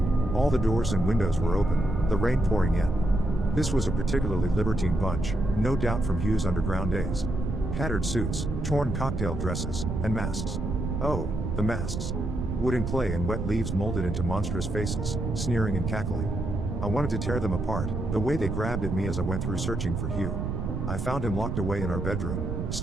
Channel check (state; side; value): noise; right; rumble, 3 dB below the sound